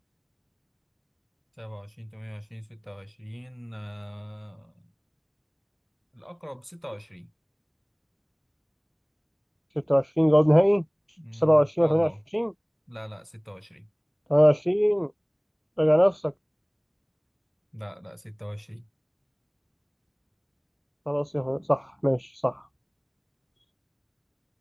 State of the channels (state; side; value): identical; both; correlation 1.00